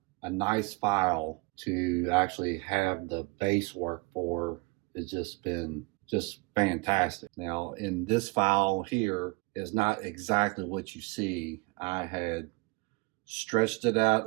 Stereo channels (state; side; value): quieter; left; 27.2 dB